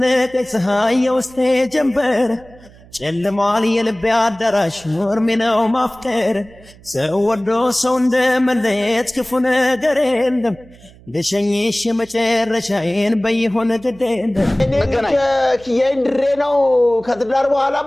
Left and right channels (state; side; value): noise; right; hum, 24 dB below the sound